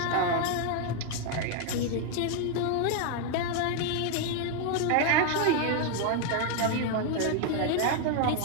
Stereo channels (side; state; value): both; different; correlation 0.00